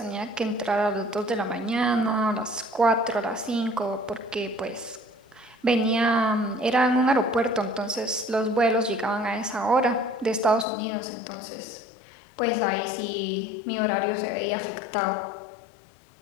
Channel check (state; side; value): drops out; right; at 10.7 s